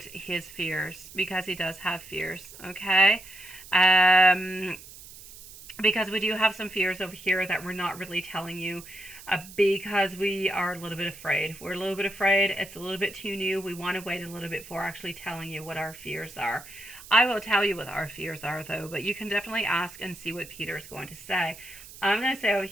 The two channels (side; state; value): right; noise; hiss, 17 dB below the sound